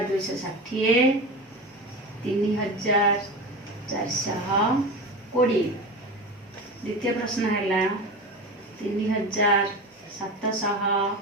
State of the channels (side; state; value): both; normal; correlation 0.27